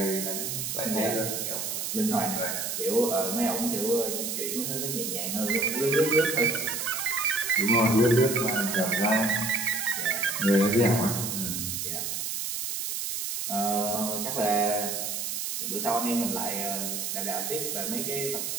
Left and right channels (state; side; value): noise; right; hiss, 3 dB below the sound